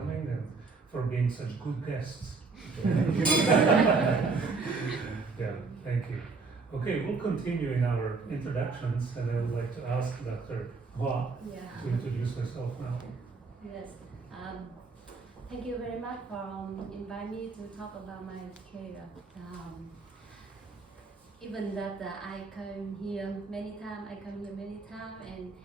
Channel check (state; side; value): quieter; left; 4.3 dB